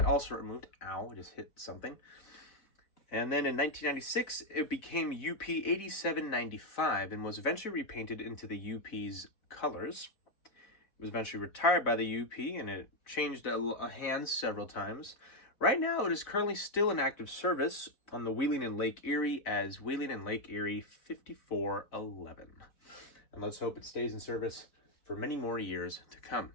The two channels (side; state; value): right; late; 4.0 ms